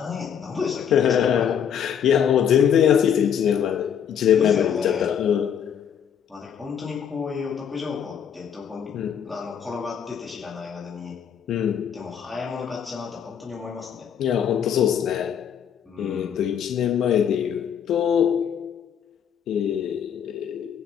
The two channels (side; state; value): right; quieter; 8.4 dB